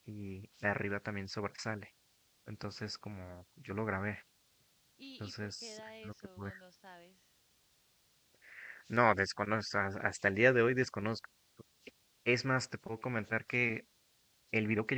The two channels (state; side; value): identical; both; correlation 1.00